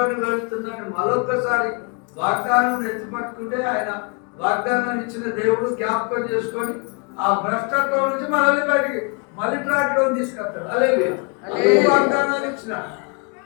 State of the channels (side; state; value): right; quieter; 36.5 dB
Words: వెళుతున్నాను. మరొక్కసారి వాగ్దానం ఎత్తిపట్టుకుంటే ఆయన వాగ్దానం ఇచ్చిన దేవుడు జ్ఞాపకం చేసుకొని ఆ భ్రష్టత్వం నుంచి మనల్ని బయటికి మళ్ళీ ట్రాక్లో తీసుకొస్తాడు. అలాగే వాగ్దానాలు ఇచ్చిన